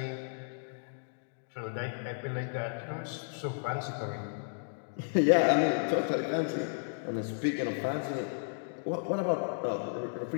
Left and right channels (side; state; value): right; silent; digital silence